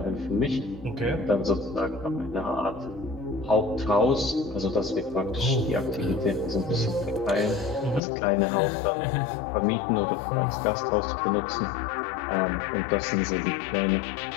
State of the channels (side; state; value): right; drops out; at 8.0 s